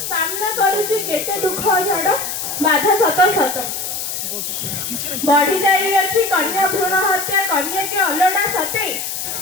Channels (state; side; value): noise; left; hiss, 4 dB below the sound